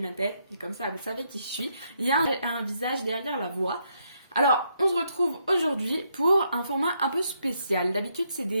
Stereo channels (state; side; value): inverted; both; correlation -0.76